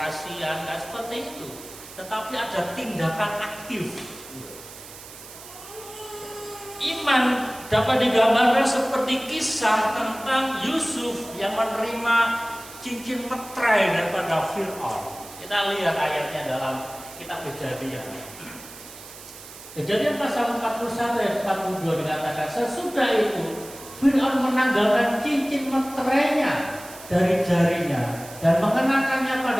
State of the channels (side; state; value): right; noise; hiss, 16 dB below the sound